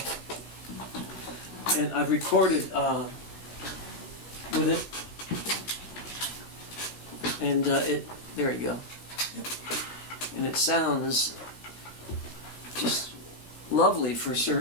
And I've recorded with it. And there you go. And it sounds just lovely for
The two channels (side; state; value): right; late; 16 ms